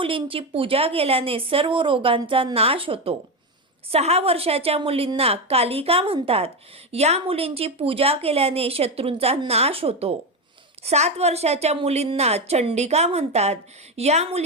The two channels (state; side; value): normal; both; correlation 0.13